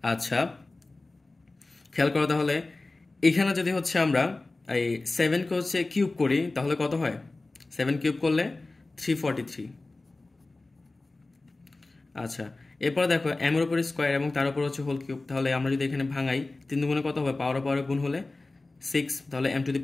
আচ্ছা খেয়াল করো, তাহলে এখানে যদি হচ্ছে আমরা এই 7কে হচ্ছে কিউব করি তাহলে কত হয়? 7 কিউব করলে 343। আচ্ছা, এরপর দেখো m এর উপরে স্কোয়ার এবং তার উপর হচ্ছে হোল কিউব, তাহলে আমরা যদি এখানে ভাঙাই 3 দুগুণে কত হবে? পাওয়ারে গুণ হলে 6, তাহলে m to the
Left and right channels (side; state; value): right; quieter; 3.2 dB